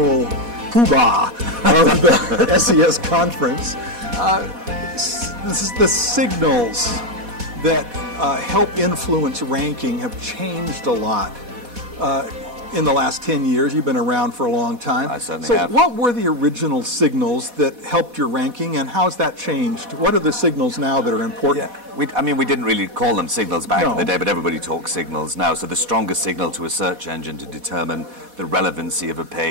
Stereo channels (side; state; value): left; late; 4.1 ms